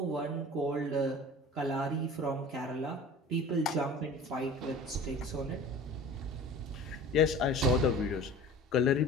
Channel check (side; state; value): both; normal; correlation 0.41